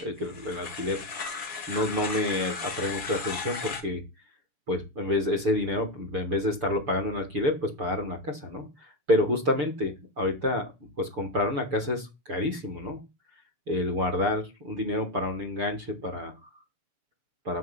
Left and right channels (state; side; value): late; left; 6.8 ms